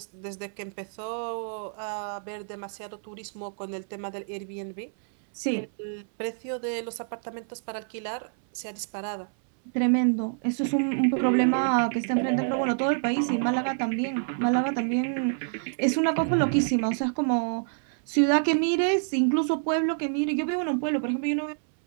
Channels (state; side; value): silent; left; 60 dB below the other